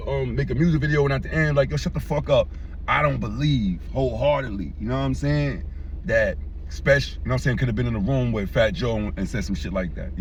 make a music video and at the end, like, yo, shut the fuck up. I don't believe wholeheartedly, you know what I'm saying, that Spesh, you know what I'm saying, could have been in the room with Fat Joe and said some shit like that.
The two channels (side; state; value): both; identical; correlation 1.00